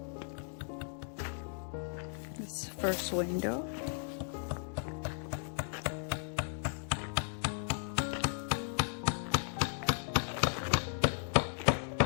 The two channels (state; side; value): silent; right; digital silence